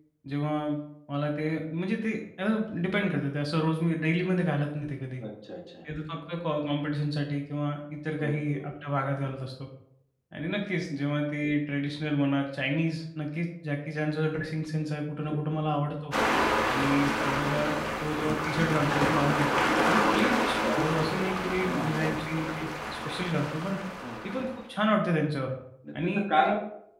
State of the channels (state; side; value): identical; both; correlation 1.00